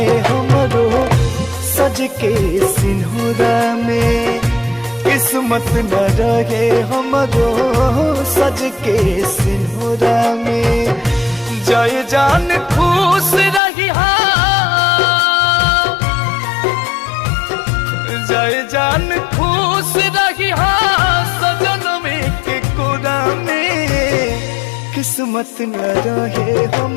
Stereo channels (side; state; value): right; drops out; at 13.6 s